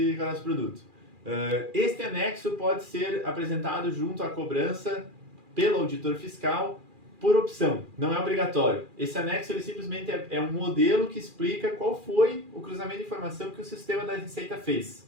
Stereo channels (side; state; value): left; late; 2.4 ms